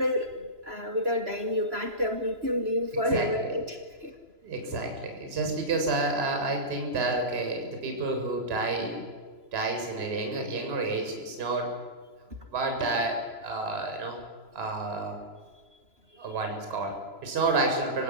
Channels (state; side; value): late; left; 3.0 ms